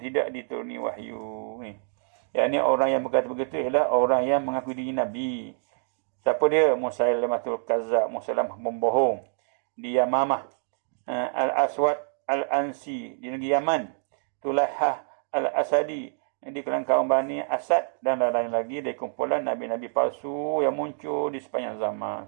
tidak dituruni wahyu. Yang ni orang yang berkata begitu ialah orang yang mengaku diri Nabi. Siapa dia? Musailamatul Kazzab, Musailamah pembohong. Di Yamamah. Al-Aswad Al-Ansi di negeri Yaman. Tulahah Al-Asadi di kalangan kaum Bani Asad, dan lain-lain lagi dari kumpulan Nabi-Nabi palsu yang muncul di sepanjang zaman.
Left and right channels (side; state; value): left; silent; digital silence